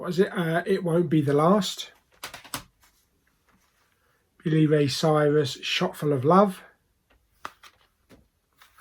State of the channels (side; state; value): both; identical; correlation 1.00